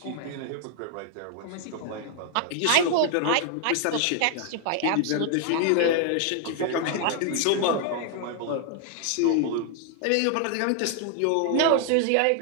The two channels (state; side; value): different; both; correlation 0.00